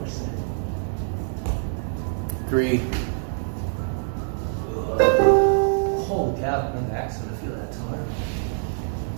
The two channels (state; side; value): silent; left; digital silence